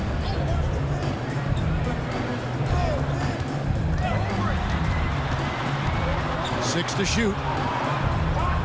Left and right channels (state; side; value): identical; both; correlation 1.00